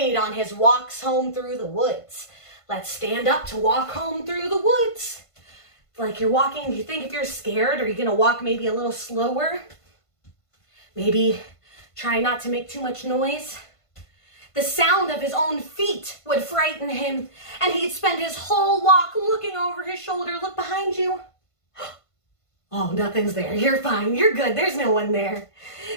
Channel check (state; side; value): late; right; 1.5 ms